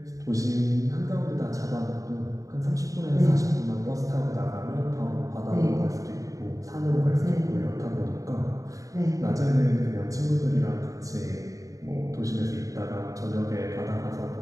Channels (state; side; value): late; left; 0.16 ms